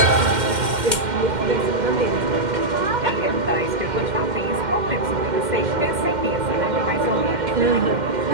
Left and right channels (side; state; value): left; late; 2.1 ms